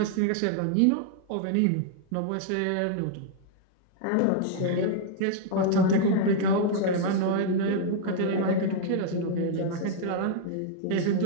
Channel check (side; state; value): both; different; correlation -0.01